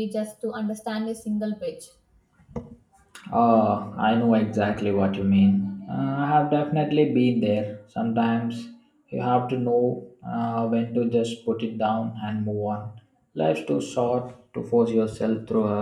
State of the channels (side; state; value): both; identical; correlation 1.00